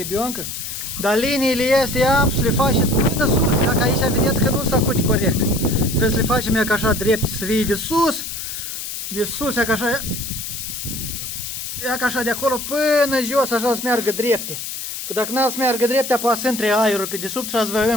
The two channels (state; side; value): noise; left; hiss, 7 dB below the sound